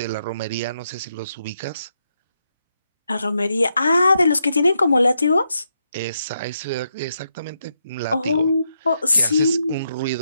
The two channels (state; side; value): inverted; both; correlation -0.82